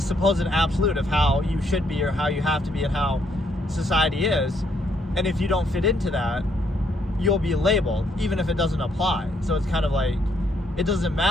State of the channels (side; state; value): both; normal; correlation 0.71